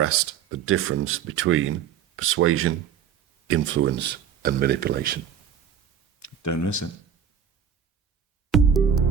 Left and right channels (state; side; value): quieter; left; 8.1 dB